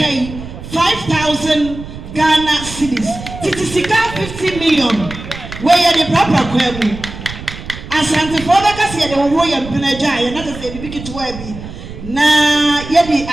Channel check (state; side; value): noise; right; rumble, 12 dB below the sound